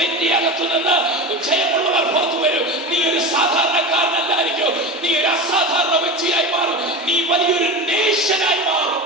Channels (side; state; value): both; normal; correlation 0.26